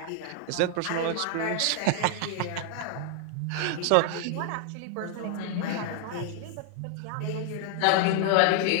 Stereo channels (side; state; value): both; different; correlation 0.00